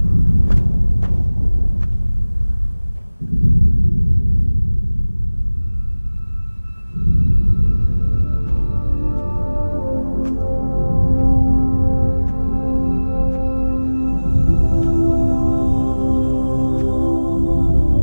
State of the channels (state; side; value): inverted; both; correlation -1.00